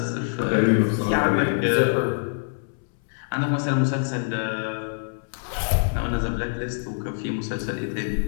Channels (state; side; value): silent; right; 62 dB below the other